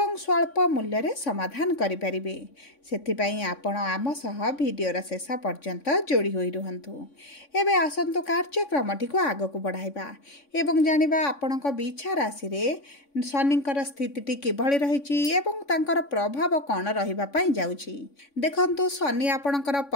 स्वल्प मूल्य रे समाधान करि परिबे। सेथिपई आपण आम सह वीडियोर शेष पर्यंत जोड़ी होई रुहंतु। एबे आसंतु कार्यक्रमटी को आग को बढ़ाइबा एवं जानिबा आपणक बिछा राशि रे शनिकर स्थितिटी किभଳି रहिछि एवं तांकर प्रभाव कौन रहिबा पई जाउछि। देखंतु शनि आपणकर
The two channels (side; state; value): right; late; 3.6 ms